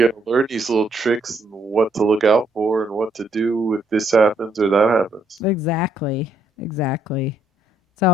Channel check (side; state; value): both; normal; correlation 0.71